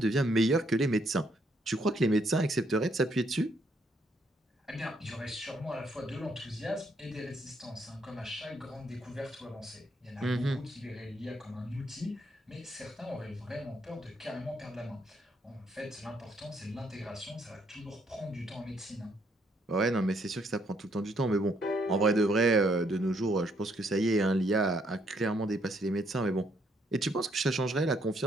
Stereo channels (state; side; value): normal; both; correlation 0.71